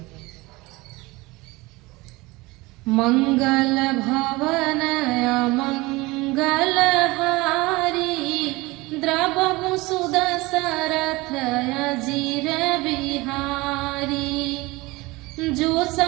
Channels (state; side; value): quieter; left; 22.2 dB